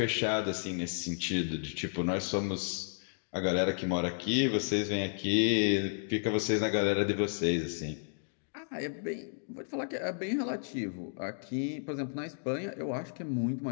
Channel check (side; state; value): right; silent; digital silence